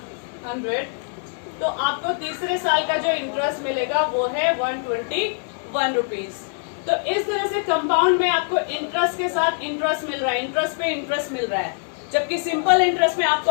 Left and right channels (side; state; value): right; silent; 63 dB below the other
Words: 100. तो आपको तीसरे साल का जो इंटरेस्ट मिलेगा वो है 121 रुपीज. तो इस तरह से कंपाउंड में आपको इंटरेस्ट के साथ इंटरेस्ट मिल रहा है, इंटरेस्ट पे इंटरेस्ट मिल रहा है, जबकि सिंपल इंटरेस्ट में